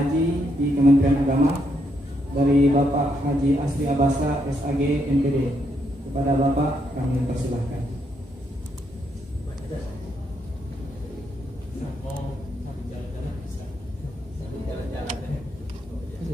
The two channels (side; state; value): both; normal; correlation 0.77